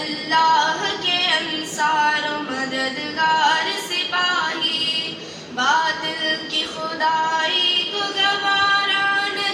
کے انصار و مددگار سپاہی، باطل کی خدائی کو گوارا نہ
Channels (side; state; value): both; identical; correlation 1.00